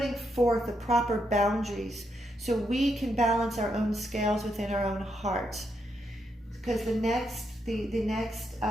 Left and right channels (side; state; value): both; normal; correlation 0.80